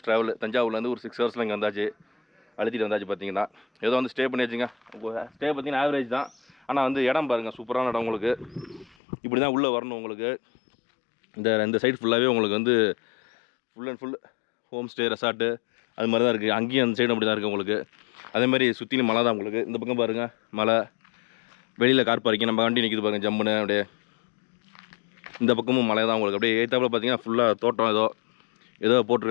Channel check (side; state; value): right; drops out; at 9.0 s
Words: ட்ராவல். தஞ்சாவூர்லேருந்து ஒரு 6 ஹவர்ஸில் இங்கே வந்தாச்சு, அழுத்திட்டு வந்தாச்சு. பார்த்தீங்கன்னா ஏதோ வந்து ஸ்டே பண்ணி வச்சுங்க. ஸ்டே பார்த்தீங்கன்னா ஆவரேஜ் தான். ஆனால் வந்து இடம் பாருங்கள், சூப்பரான இடம் உங்களுக்கு. இப்படி தான் உள்ளே வரணும் உங்களுக்கு. இந்த சைடு ஃபுல்லாகவே உங்களுக்கு வந்து full and full home stay resort அது மாதிரி தான் இருக்குது. அங்கேயும் அந்த சைடு அப்படி தான் இருக்குது உங்களுக்கு. அதேமாதிரி சுற்றிலும் மலை தான் உங்களுக்கு. இந்த பக்கம் பாருங்கள் மலை, வெளியில் கார் பார்க்கிங், நம்ம வண்டி நிற்கிது பாருங்கள் ஜம்முன்னு அப்படியே. இந்த பக்கமும் மலை தான் உங்களுக்கு. அப்படியே ஏற்றாப்புல பார்த்தீங்கன்னா ஃபுல்லாக தோட்டம் ஏதோ